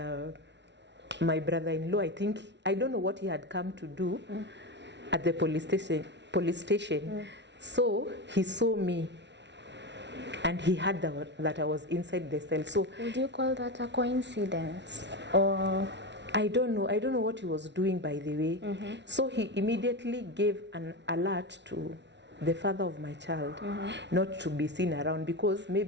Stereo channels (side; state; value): left; late; 0.51 ms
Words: my brother-in-law, I don't know what he had come to do at the police station. So he saw me and he heard that I was inside the cell. So would you call that a coincidence? Or I don't know what he was doing, by the way. So he immediately gave an alert to the father of my child not to be seen around, because